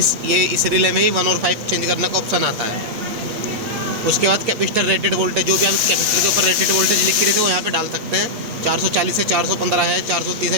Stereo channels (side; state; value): left; late; 8.6 ms